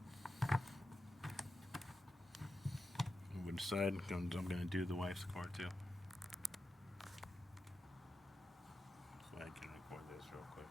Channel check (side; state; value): both; normal; correlation 0.90